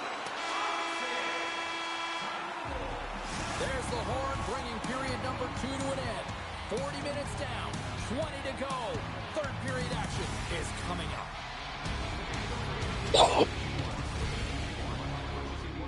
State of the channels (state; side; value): identical; both; correlation 1.00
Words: There's the horn, bringing period number 2 to an end. 40 minutes down, 20 to go. Third period action is coming up.